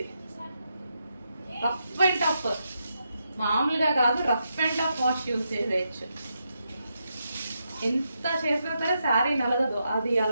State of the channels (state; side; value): inverted; both; correlation -0.83